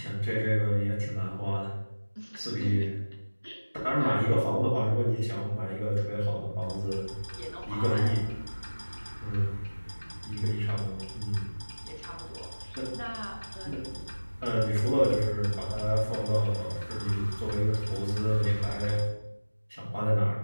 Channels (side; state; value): both; inverted; correlation -1.00